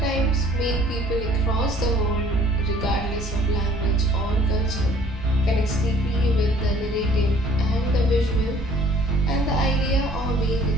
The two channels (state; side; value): normal; both; correlation 0.56